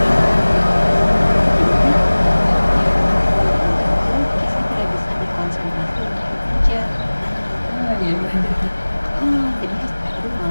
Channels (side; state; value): both; inverted; correlation -1.00